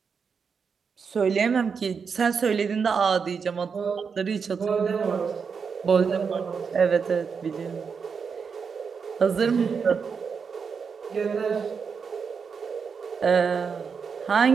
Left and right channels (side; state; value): left; quieter; 5.9 dB